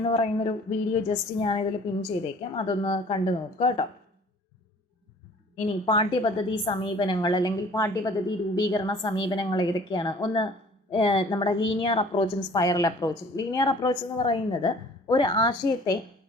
പറയുന്നൊരു വീഡിയോ ജസ്റ്റ് ഞാനിതിൽ പിൻ ചെയ്തേക്കാം, അതൊന്ന് കണ്ടു നോക്കുക കേട്ടോ. ഇനി പാഠ്യപദ്ധതി സമീപനങ്ങൾ അല്ലെങ്കിൽ പാഠ്യപദ്ധതി രൂപീകരണ സമീപനങ്ങൾ ഏതൊക്കെയാണ്? ഒന്ന് നമ്മുടെ ലീനിയർ അപ്രോച്ചും സ്പൈറൽ അപ്രോച്ചും. ലീനിയർ അപ്രോച്ച് എന്ന് പറയുന്നത് ഒരു ആശയത്തെ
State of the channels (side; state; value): both; normal; correlation 0.51